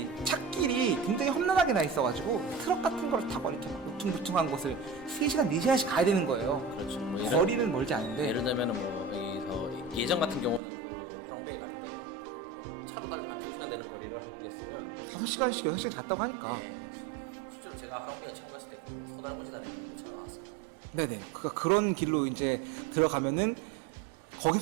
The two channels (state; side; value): drops out; left; at 10.6 s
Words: 찻길이 굉장히 험난하게 나 있어가지고 트럭 같은 걸 타고 이렇게 막 울퉁불퉁한 곳을 3시간, 4시간씩 가야 되는 거예요. 그렇죠. 뭐 거리는 멀지 않은데. 예를 들면은 뭐 여기서 예전 같은 경우는 그 하롱베이 갈 때 뭐 차로 달리면 2시간 되는 거리를 한국에 있으면 5시간씩, 6시간 갔다고 하니까. 네, 실제로 제가 하롱베이 처음 갔을 때 그 소달구지 다리는 길로 차가 갔었거든요. 네네. 그러니까 그런 길로 이제 들어가면은